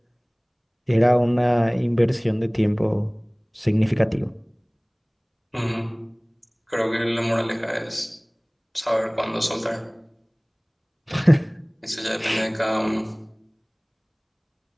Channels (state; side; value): identical; both; correlation 1.00